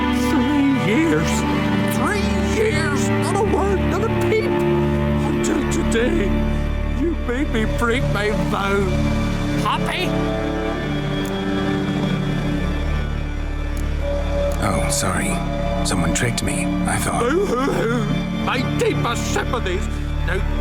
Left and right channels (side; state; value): both; identical; correlation 1.00